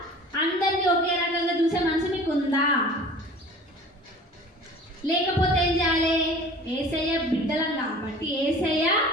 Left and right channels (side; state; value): both; normal; correlation 0.44